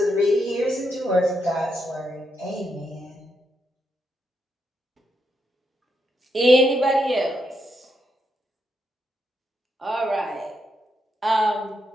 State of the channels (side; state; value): both; normal; correlation 0.81